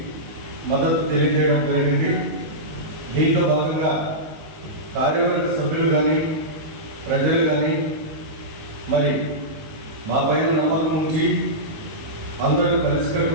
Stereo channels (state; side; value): late; left; 19 ms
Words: మద్దతు తెలియజేయడం జరిగింది. దీంట్లో భాగంగా కార్యవర్గ సభ్యులు కానీ, ప్రజలు కానీ మరి మా పైన నమ్మకం ఉంచి అందరూ